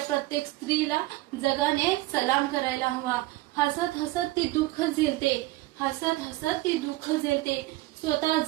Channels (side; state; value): left; quieter; 19.0 dB